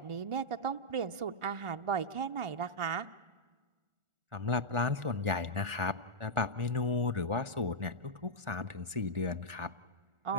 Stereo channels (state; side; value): late; left; 1.4 ms